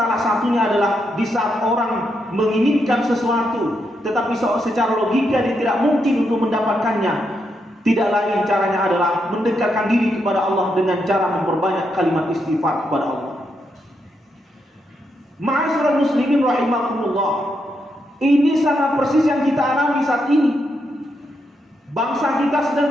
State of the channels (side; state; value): both; normal; correlation 0.81